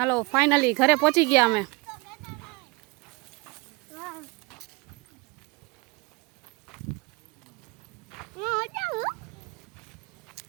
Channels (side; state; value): left; quieter; 25.7 dB